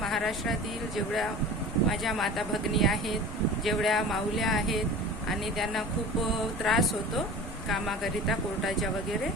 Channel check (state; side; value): normal; both; correlation 0.38